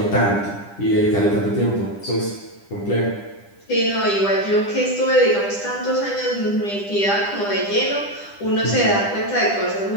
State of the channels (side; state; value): right; late; 10 ms